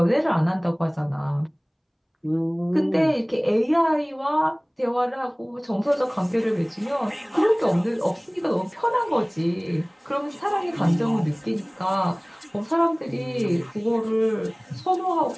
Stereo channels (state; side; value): identical; both; correlation 1.00